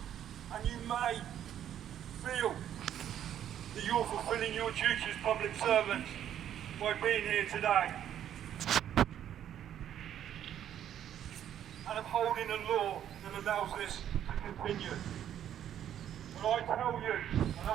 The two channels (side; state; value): left; quieter; 10.4 dB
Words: And you may feel that you're fulfilling your duty as public servants by being here today and upholding a law that allows this to continue. But I tell you, and I